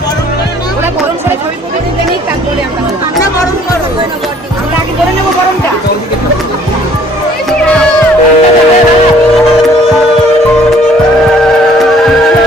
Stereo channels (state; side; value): normal; both; correlation 0.58